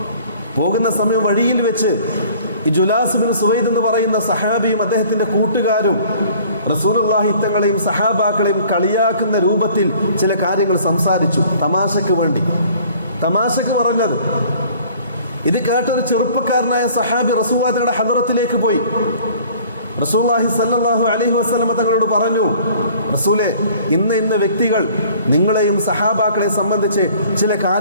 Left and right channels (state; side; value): inverted; both; correlation -0.52